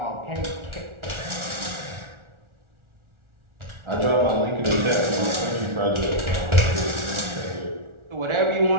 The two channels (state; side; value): late; left; 1.4 ms